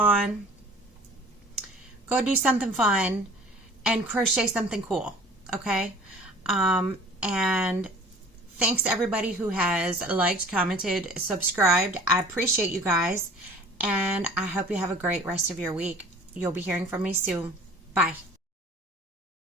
go do something fun, and crochet something cool, okay? And thanks to everybody who has liked, commented, subscribed. I appreciate you guys, and I hope you have a great rest of your week. You'll be hearing from me soon. Bye.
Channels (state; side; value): normal; both; correlation 0.47